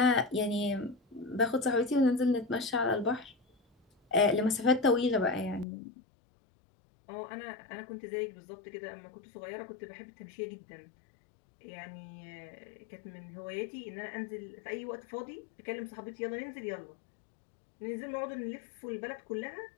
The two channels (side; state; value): right; drops out; at 5.7 s